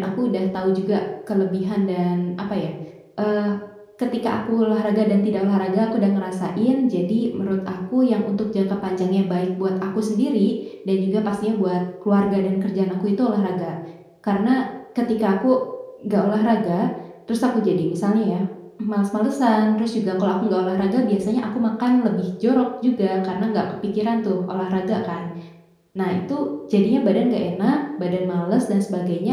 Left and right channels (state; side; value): identical; both; correlation 1.00